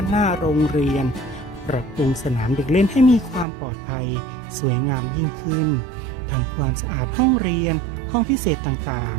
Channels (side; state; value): left; drops out; at 3.5 s